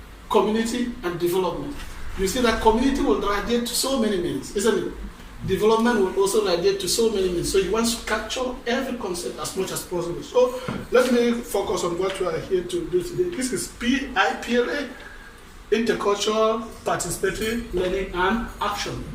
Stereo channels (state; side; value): identical; both; correlation 1.00